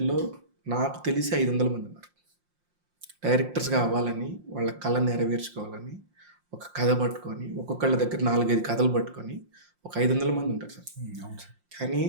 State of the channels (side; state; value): left; late; 5.7 ms